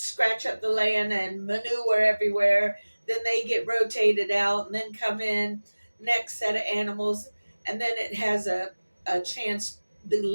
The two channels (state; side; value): inverted; both; correlation -1.00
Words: up the land and manure everywhere. Then they get rotated out and then come in next set of animals, and then it has a chance. The